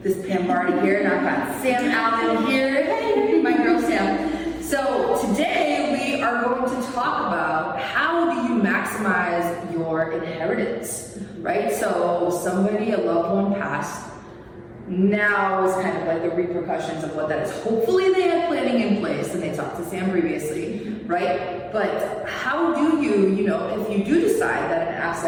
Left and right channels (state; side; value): identical; both; correlation 1.00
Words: this is Pam Bardhi here, and I've got Sam Allen here. Hey, my girl Sam. So today we are going to talk about how do you maximize your inheritance, right? So somebody, a loved one passed, now is kind of like the repercussions of what that is. Hopefully they had planning in place and they talked to Sam previously, right? But how do you, if you do decide that an